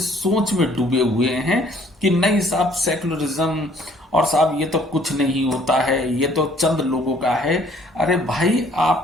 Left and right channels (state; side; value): normal; both; correlation 0.59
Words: में डूबे हुए हैं कि नहीं साहब सेकुलरिज्म और साहब ये तो कुछ नहीं होता है, ये तो चंद लोगों का है। अरे भाई